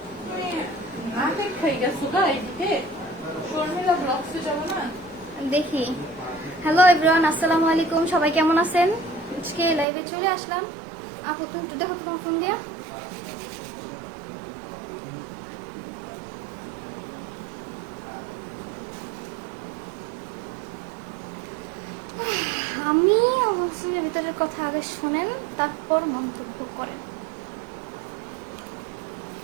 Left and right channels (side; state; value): left; drops out; at 9.9 s